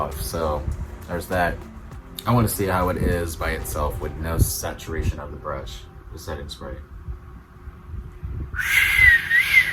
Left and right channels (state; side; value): identical; both; correlation 1.00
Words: So there's that. I want to see how it is by itself with no saturation of the brush, the setting spray.